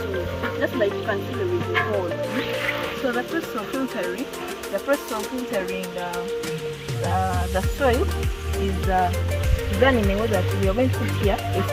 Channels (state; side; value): identical; both; correlation 1.00